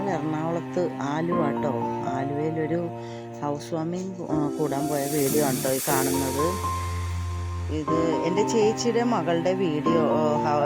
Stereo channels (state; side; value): identical; both; correlation 1.00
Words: എറണാകുളത്ത് ആലുവാട്ടോ. ആലുവയിലൊരു ഹൗസ് വാമിങ് കൂടാൻ പോയ വീഡിയോ ആണ് കേട്ടോ ഈ കാണുന്നത്. ഇത് എൻ്റെ ചേച്ചിയുടെ മകളുടെ വീഡിയോ,